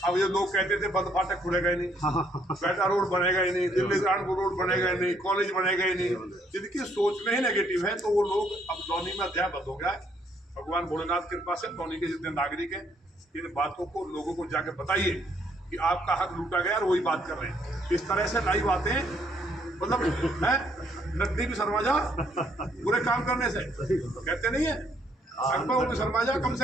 अब ये लोग कहते थे बंद फाटक खुलेगा ही नहीं, बेटा रोड बनेगा ही नहीं, दिल्ली कानपुर रोड बनेगा ही नहीं, कॉलेज बनेगा ही नहीं। जिनकी सोच में ही नेगेटिव है, तो वो लोग अब कॉलोनी में अध्याय बंद हो गया है। भगवान भोलेनाथ की कृपा से कॉलोनी के जितने नागरिक हैं, इन बातों को लोगों को जाके बताइए कि आपका हक लूटा गया और वही बात कर रहे हैं। इस तरह से नई बातें, मतलब है नकदी भी शर्मा जा बुरे काम करने से, कहते नहीं है अकबर भी शर्मा जा, कम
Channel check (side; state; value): both; normal; correlation 0.69